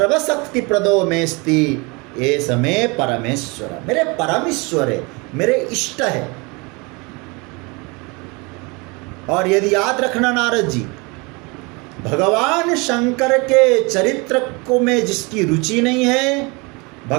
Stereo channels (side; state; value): left; quieter; 28.1 dB